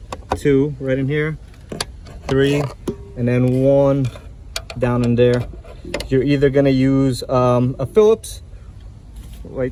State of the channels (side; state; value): both; identical; correlation 1.00